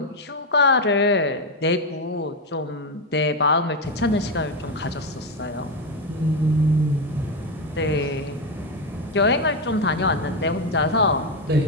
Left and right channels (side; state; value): both; normal; correlation 0.09